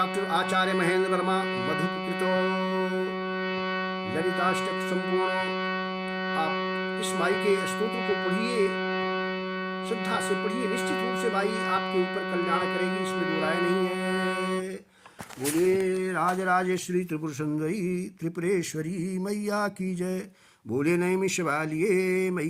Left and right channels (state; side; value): identical; both; correlation 1.00